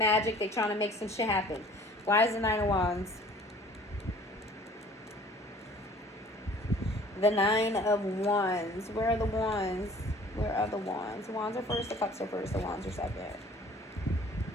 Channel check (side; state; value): both; normal; correlation 0.51